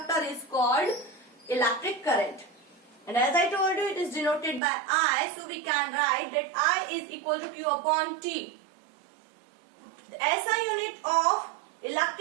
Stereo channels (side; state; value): left; drops out; at 4.6 s